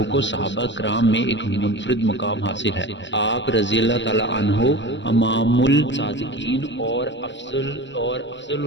کو صحابہ کرام میں ایک منفرد مقام حاصل ہے۔ آپ رضی اللہ تعالی عنہ امام الصادقین اور افضل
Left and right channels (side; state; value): right; late; 0.53 ms